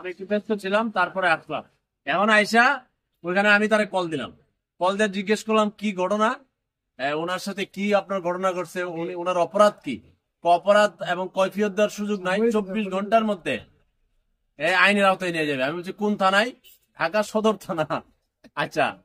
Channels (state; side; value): identical; both; correlation 1.00